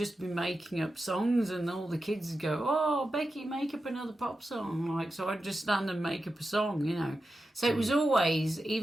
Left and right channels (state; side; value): normal; both; correlation 0.91